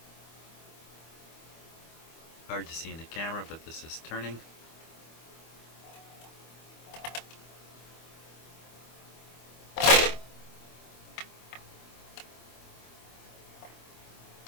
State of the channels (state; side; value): late; right; 25 ms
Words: Hard to see in the camera, but this is turning.